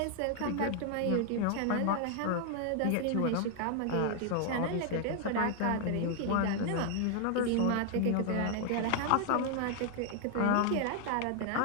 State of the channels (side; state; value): both; different; correlation 0.00